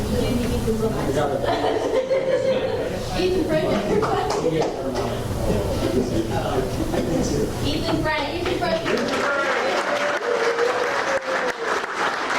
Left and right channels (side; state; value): both; identical; correlation 1.00